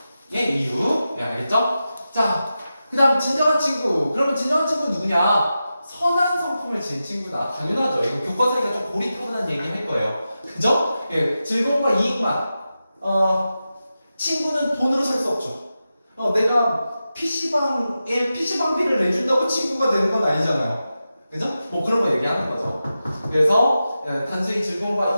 이유. 예, 알겠죠? 자, 그 다음 진정한 친구. 그러면 진정한 친구는 누구냐? 선한 성품을 지닌 친구다. 당연하죠. 이거 교과서니까 좀 고리타분한 얘기 할 거예요. 그죠? 예, 즐거움과 이익만. 친구는 돈으로 살 수 없죠. 내가 PC방비를 내준다고 친구가 되는 건 아니잖아요. 그죠? 뭐 그런 거 얘기하는 거죠. 그래서 단순히 즐거움과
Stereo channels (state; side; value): inverted; both; correlation -0.91